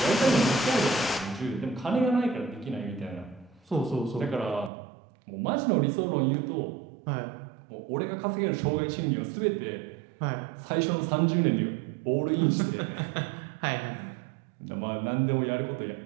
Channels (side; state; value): left; drops out; at 4.7 s